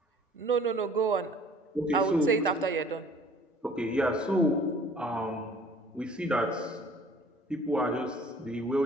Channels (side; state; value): both; normal; correlation 0.52